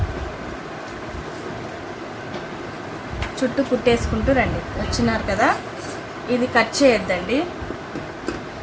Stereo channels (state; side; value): identical; both; correlation 1.00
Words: చుట్టూ కుట్టేసుకుంటూ రండి. వచ్చినారు కదా, ఇది కట్ చేయొద్దండి.